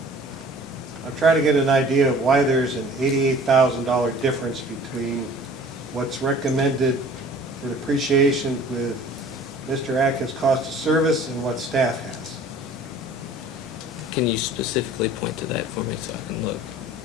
I'm trying to get an idea of why there's an $88,000 difference between what's recommended for depreciation with Mr. Atkins' cost of service and what staff has. Can you specifically point to that for me so I can look?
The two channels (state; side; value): normal; both; correlation 0.48